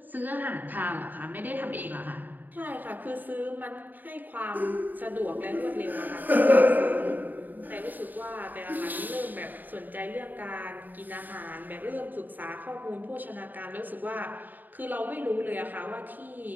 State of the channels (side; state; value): left; late; 0.087 ms